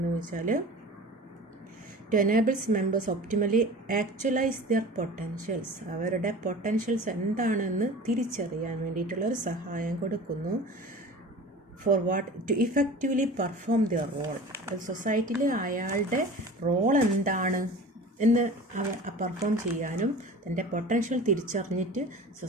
വെച്ചാൽ to enables members optimally actualize their potentials, അവരുടെ പൊട്ടൻഷ്യൽസ് എന്താണെന്ന് തിരിച്ചറിയാൻ വേണ്ടിയിട്ടുള്ള ഒരു സഹായം കൊടുക്കുന്നു. For what? To effectively perform their role. സൊസൈറ്റിയിൽ അയാളുടെ റോൾ എന്താണ് എന്ന് പെർഫോം ചെയ്യാനും തൻ്റെ പൊട്ടൻഷ്യൽ തിരിച്ചറിഞ്ഞിട്ട്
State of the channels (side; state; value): both; normal; correlation 0.38